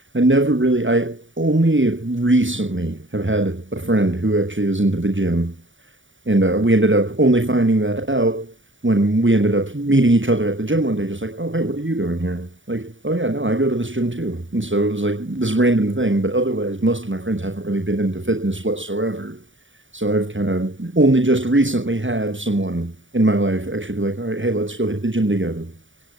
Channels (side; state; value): left; late; 0.56 ms